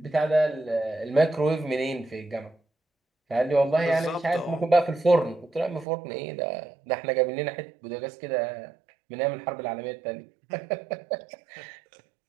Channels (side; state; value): left; drops out; at 5.9 s